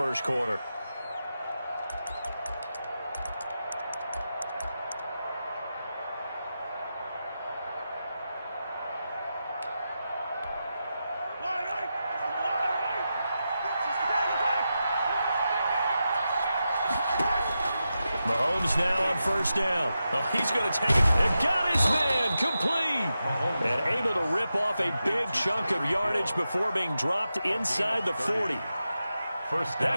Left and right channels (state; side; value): inverted; both; correlation -0.90